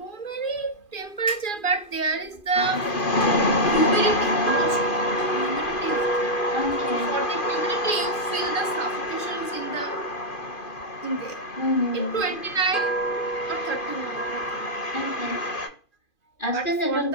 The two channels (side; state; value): right; late; 2.5 ms